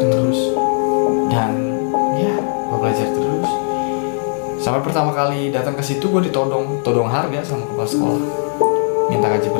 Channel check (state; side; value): silent; right; 60 dB below the other